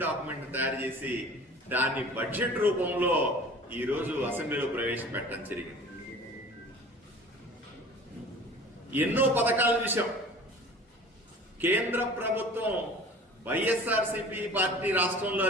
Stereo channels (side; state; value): both; normal; correlation 0.43